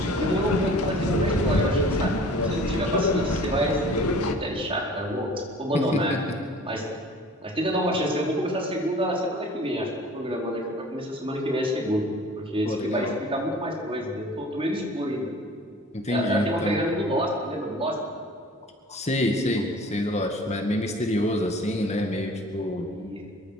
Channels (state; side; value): normal; both; correlation 0.46